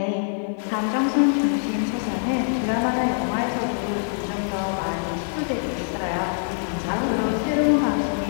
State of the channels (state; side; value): silent; right; 63 dB below the other